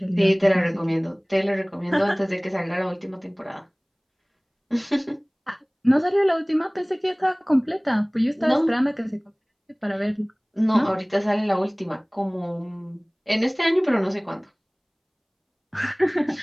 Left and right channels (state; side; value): identical; both; correlation 1.00